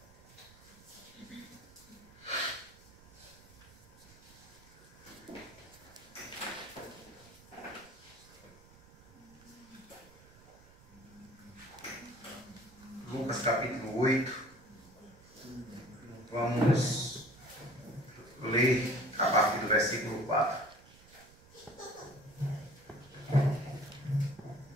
Lucas, capítulo 8. Vamos ler a partir do versículo 4.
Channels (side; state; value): right; noise; rumble, 24 dB below the sound